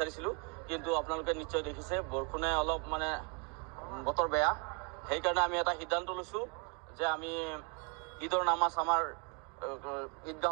কিন্তু আপোনালোকে নিশ্চয় দেখিছে বৰষুণে অলপ বতৰ বেয়া, সেইকাৰণে আমি এটা সিদ্ধান্ত লৈছোঁ যে আমি ঈদৰ নামাজ আমাৰ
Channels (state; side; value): quieter; left; 35.0 dB